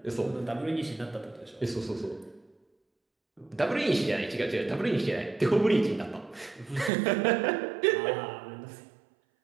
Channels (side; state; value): left; drops out; at 6.9 s